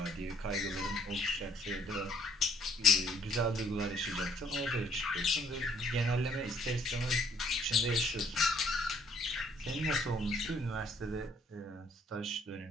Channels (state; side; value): normal; both; correlation 0.63